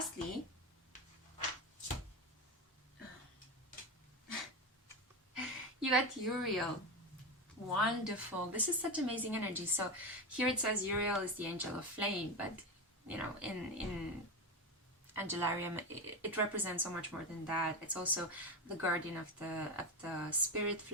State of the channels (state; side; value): normal; both; correlation 0.17